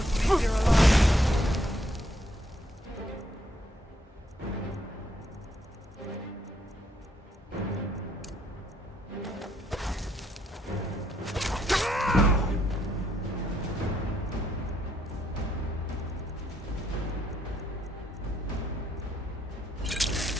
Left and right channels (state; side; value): normal; both; correlation 0.73